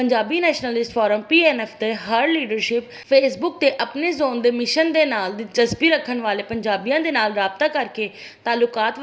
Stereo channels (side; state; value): both; identical; correlation 1.00